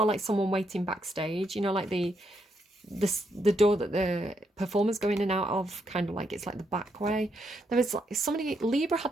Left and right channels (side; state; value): both; normal; correlation 0.78